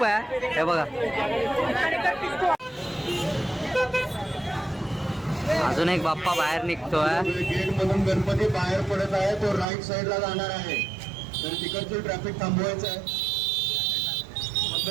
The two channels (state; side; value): drops out; left; at 9.7 s